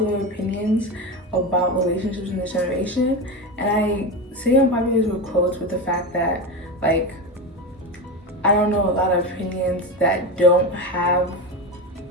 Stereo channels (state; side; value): normal; both; correlation 0.20